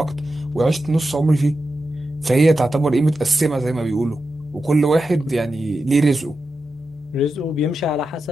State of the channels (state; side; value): normal; both; correlation 0.90